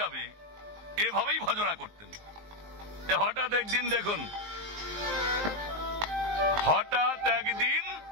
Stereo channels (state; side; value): late; left; 19 ms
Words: এভাবেই ভজনা করতেন। হঠাৎ একদিন দেখুন, হঠাৎ একদিন